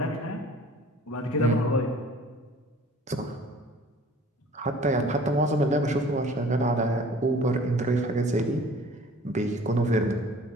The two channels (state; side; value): normal; both; correlation 0.49